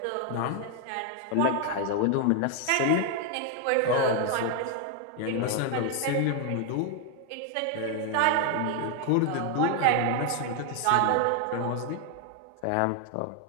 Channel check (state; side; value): different; both; correlation 0.00